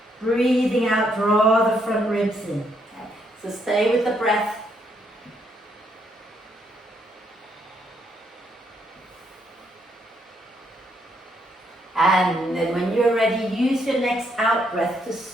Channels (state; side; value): normal; both; correlation 0.74